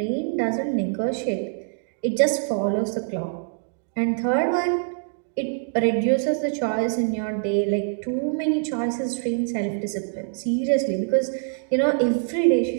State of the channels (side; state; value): left; silent; digital silence